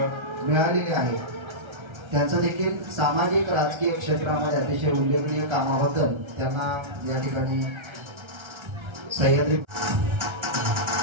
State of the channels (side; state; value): left; late; 1.3 ms